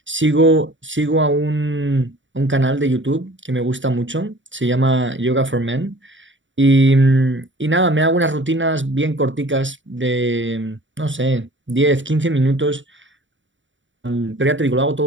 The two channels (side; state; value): left; late; 0.55 ms